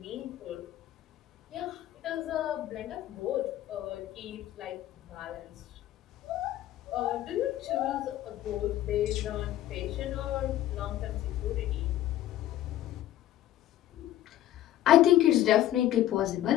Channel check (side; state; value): right; quieter; 13.3 dB